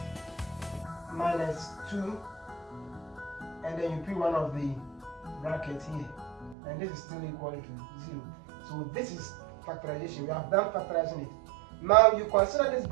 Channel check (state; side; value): drops out; left; at 6.6 s